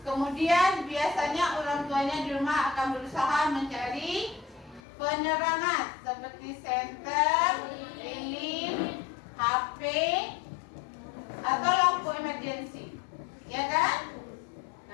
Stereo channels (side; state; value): right; drops out; at 4.8 s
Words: Kemudian biasanya orang tuanya di rumah akan berusaha mencari penerangan seperti senter, lilin, HP, atau lampu emergency, ya kan?